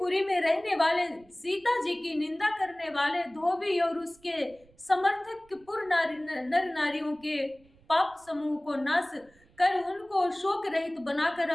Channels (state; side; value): noise; right; rumble, 30 dB below the sound